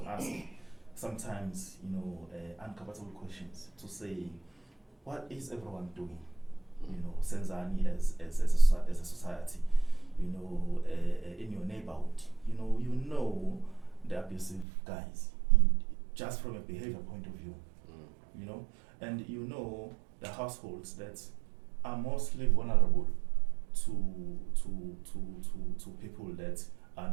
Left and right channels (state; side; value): drops out; left; at 14.7 s